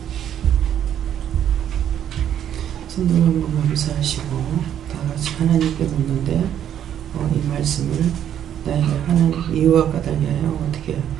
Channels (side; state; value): left; quieter; 10.0 dB